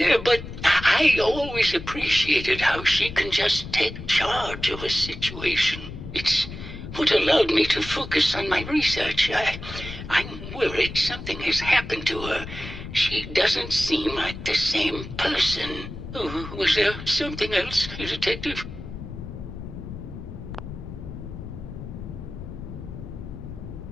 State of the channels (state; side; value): noise; left; rumble, 10 dB below the sound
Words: but I always appreciated how she can just take charge of a situation. It's what allowed me to focus on my research. I'm worried something has happened to her. She doesn't seem like the same person. Oh, was there something else, Detective?